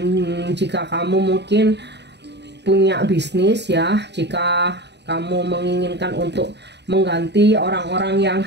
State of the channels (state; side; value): late; left; 0.50 ms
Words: jika kamu mungkin punya bisnis ya, jika kamu menginginkan untuk mengganti orang-orang yang